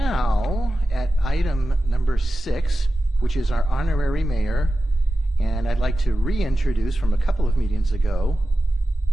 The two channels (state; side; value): normal; both; correlation 0.93